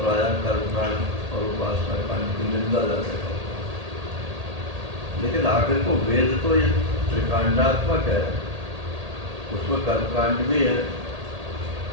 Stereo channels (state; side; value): late; left; 1.8 ms